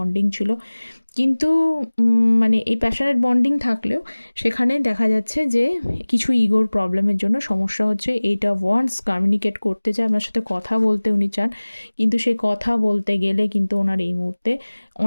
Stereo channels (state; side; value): inverted; both; correlation -1.00